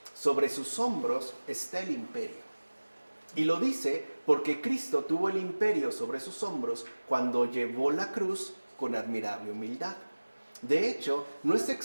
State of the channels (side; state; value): both; inverted; correlation -1.00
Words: sobre sus hombros está el imperio. Y lo dice porque Cristo tuvo el imperio sobre sus hombros cuando llevó la cruz con admirable humildad. De hecho, no es